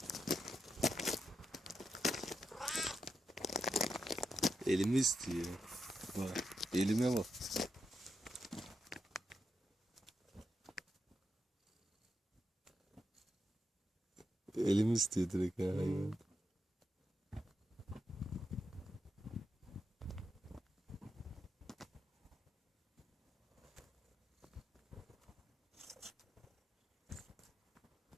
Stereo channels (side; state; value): both; normal; correlation 0.85